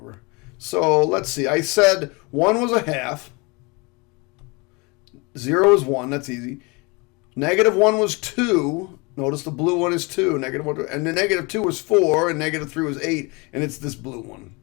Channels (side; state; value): right; quieter; 28.2 dB